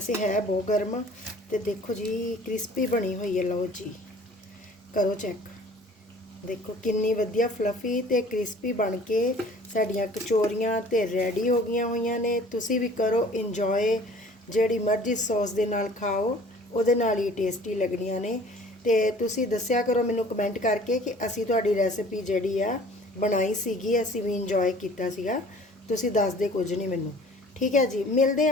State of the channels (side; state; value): both; normal; correlation 0.50